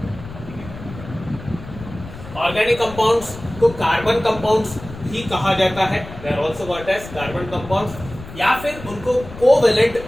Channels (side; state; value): left; noise; rumble, 14 dB below the sound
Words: Organic compounds को carbon compounds भी कहा जाता है, they are also called as carbon compounds, या फिर उनको covalent